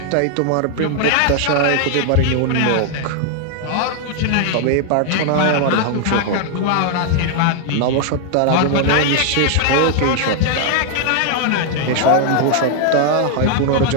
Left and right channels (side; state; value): both; different; correlation 0.00